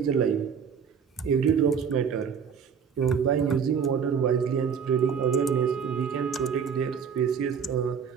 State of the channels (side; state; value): left; quieter; 6.9 dB